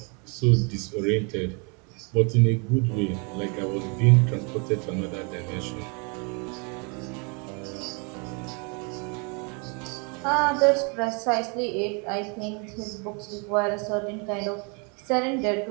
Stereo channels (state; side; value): quieter; left; 34.1 dB